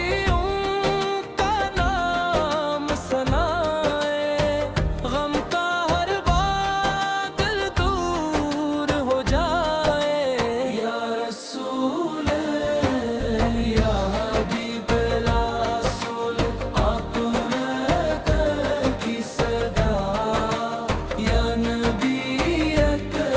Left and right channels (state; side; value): identical; both; correlation 1.00